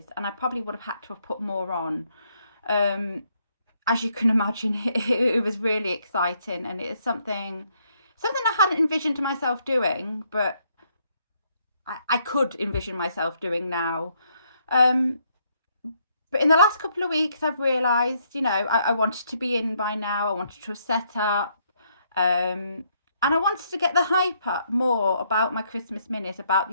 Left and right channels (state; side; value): inverted; both; correlation -0.72